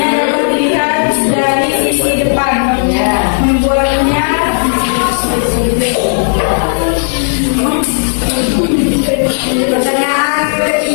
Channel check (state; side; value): silent; right; digital silence